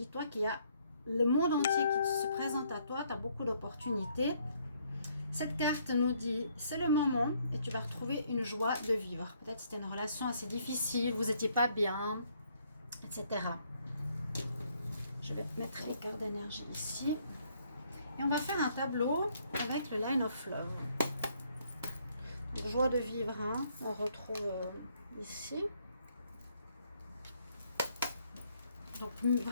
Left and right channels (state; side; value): inverted; both; correlation -0.68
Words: qu'il y a le monde entier qui se présente à toi, tu as beaucoup d'opportunités. Cette carte nous dit, c'est le moment et tu vas retrouver une joie de vivre. Peut-être c'était une relation assez difficile, vous n'étiez pas bien, etc. Je vais mettre les cartes d'énergie ici. Et on va faire un tableau avec le Line of Love. Donc, joie de vivre, on retrouve ici. Donc